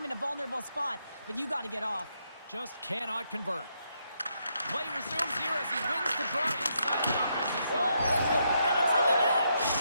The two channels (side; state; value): both; inverted; correlation -0.78